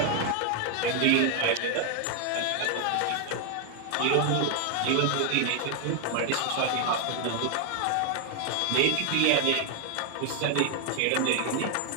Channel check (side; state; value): both; different; correlation 0.00